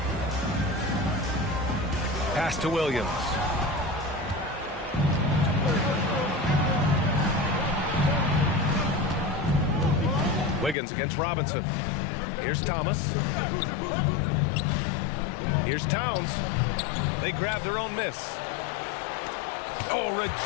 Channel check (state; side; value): drops out; right; at 10.8 s